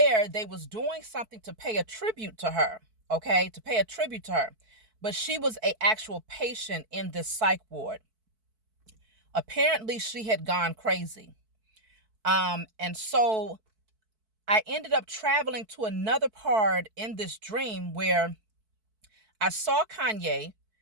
They was doing something to pay a tribute to her, okay? To pay a tribute to her. But she was a actual patient in this psych ward. Apparently, she had gone crazy. And so I ended up traveling to another part in this dream where I saw Kanye.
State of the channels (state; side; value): late; left; 4.6 ms